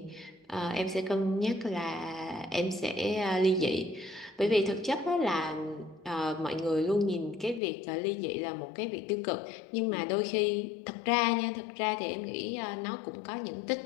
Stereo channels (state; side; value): drops out; right; at 7.6 s